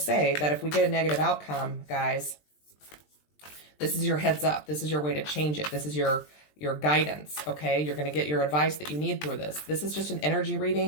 say that if we get a negative outcome, guys, this is your heads up. This is your way to change it. This is your guidance, okay? You're going to get your advice that you need through this. This is just an energy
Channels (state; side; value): late; right; 20 ms